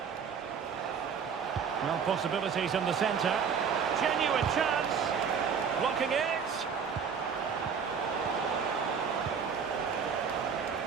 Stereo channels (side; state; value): left; quieter; 6.6 dB